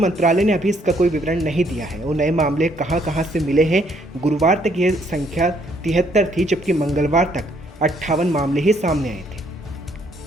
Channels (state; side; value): normal; both; correlation 0.68